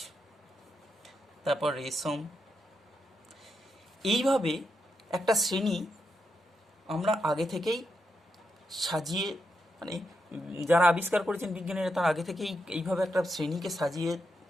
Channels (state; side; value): normal; both; correlation 0.83